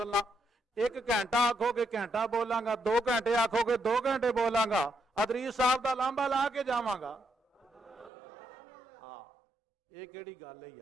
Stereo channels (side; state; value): left; drops out; at 8.1 s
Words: نہ۔ ایک گھنٹہ آکھو گے گھنٹہ بولاں گا، 2 گھنٹے آکھو گے 2 گھنٹے بولاں گا، ادریس صاحب دا لامبا لا کے جاواں گا۔ ہاں یہ کیڑی گل ہے